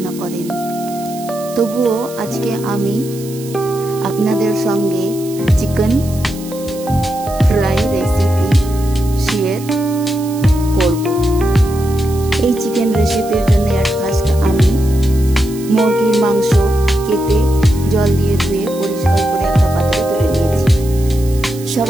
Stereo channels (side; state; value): right; noise; hiss, 17 dB below the sound